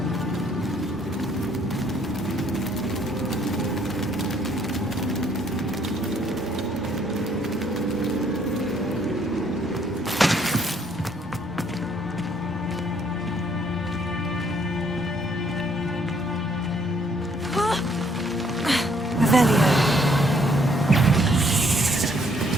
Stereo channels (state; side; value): normal; both; correlation 0.66